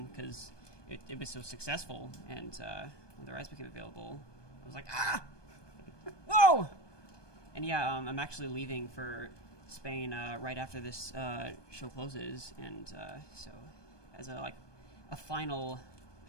because it was so successful, and when the rights became available, I was like, ah, whoa. And yeah, I'm actually leaving for Spain right after this show closes, and so as a final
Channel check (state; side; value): late; right; 1.2 ms